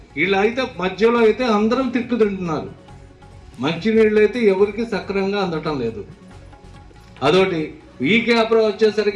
వీళ్ళు అయితే మధ్యలో అయితే అందరం తిట్టు తింటున్నారు. మంచినీళ్ళు అయితే ఎవరికి సక్రమంగా అందటం లేదు. అదొకటి. ఈ క్యాప్లో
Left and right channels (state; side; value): identical; both; correlation 1.00